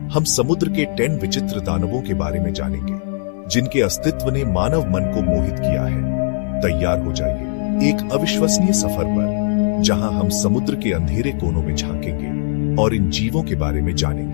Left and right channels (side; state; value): right; silent; 64 dB below the other